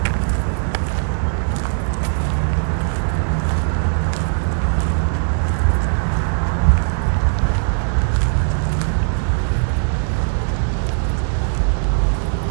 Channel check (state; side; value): silent; left; 66 dB below the other